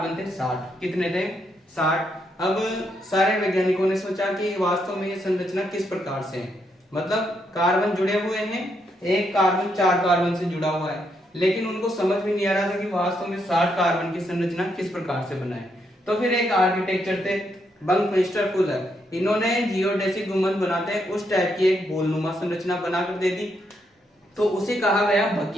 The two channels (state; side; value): normal; both; correlation 0.78